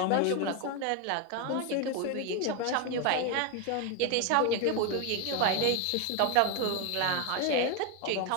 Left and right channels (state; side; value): different; both; correlation 0.01